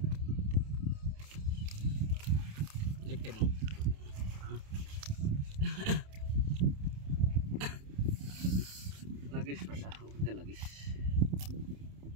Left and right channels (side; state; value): left; late; 28 ms